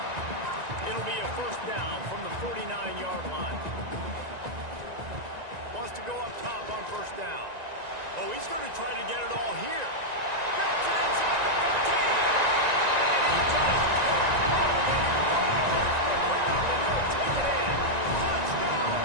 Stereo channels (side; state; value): left; late; 1.9 ms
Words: It'll be a first down from the 49-yard line. Wants to go up top on first down. Oh, he's going to try to get it all here. Gets it inside the 15. And he just kept running, and he runs from the ground, and he'll take it in. Touchdown,